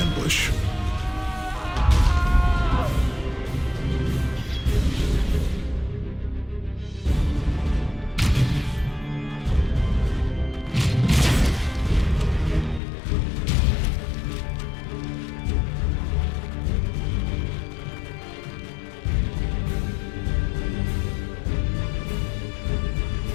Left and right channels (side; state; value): right; drops out; at 12.8 s